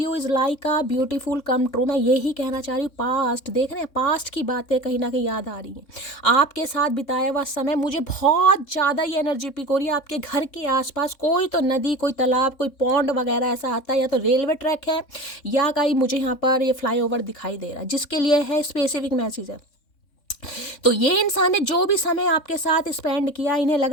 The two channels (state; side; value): late; right; 3.6 ms